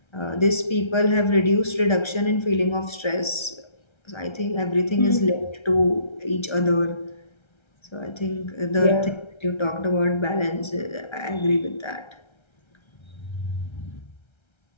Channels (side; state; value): right; late; 1.3 ms